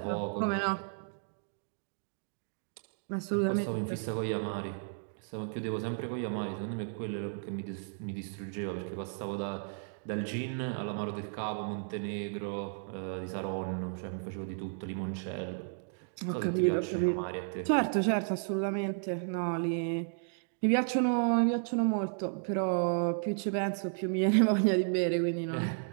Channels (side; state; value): left; silent; digital silence